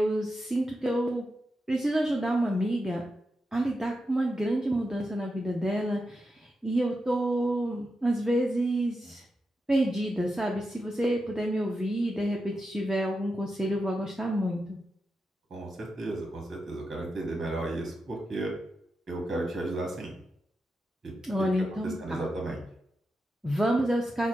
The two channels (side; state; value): both; normal; correlation 0.88